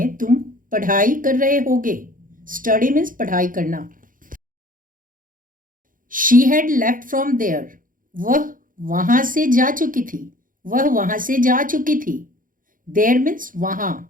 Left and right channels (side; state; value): left; late; 0.40 ms